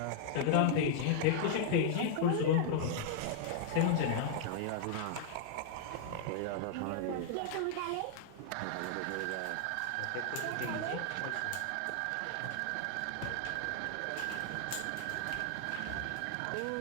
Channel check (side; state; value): both; different; correlation -0.01